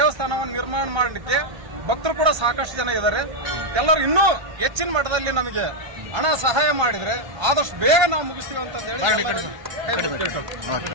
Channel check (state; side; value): late; left; 1.3 ms